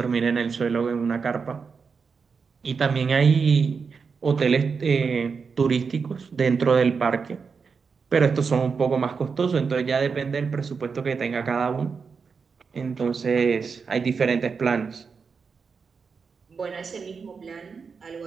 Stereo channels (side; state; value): left; quieter; 5.4 dB